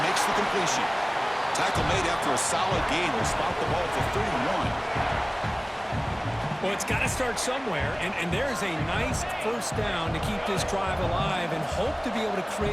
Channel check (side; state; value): both; identical; correlation 1.00